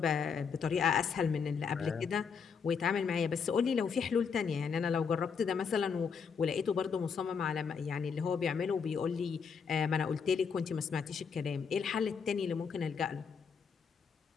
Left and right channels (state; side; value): quieter; right; 6.2 dB